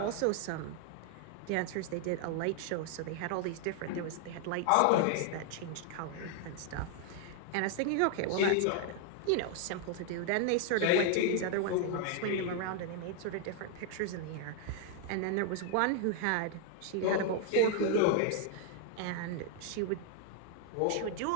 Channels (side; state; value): both; different; correlation 0.00